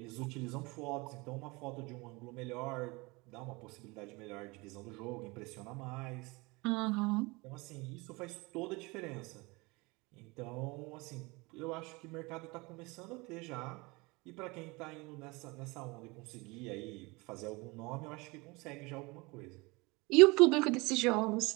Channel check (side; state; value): left; quieter; 25.3 dB